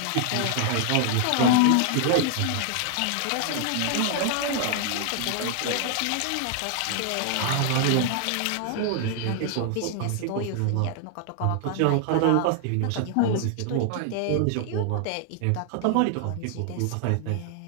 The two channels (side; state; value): both; different; correlation 0.00